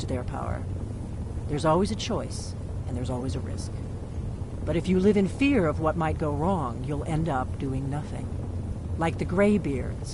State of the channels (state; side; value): identical; both; correlation 1.00